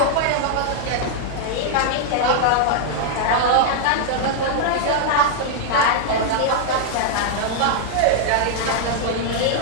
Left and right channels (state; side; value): different; both; correlation 0.00